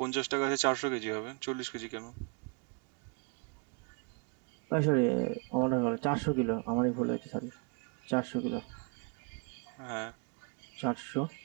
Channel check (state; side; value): quieter; left; 34.9 dB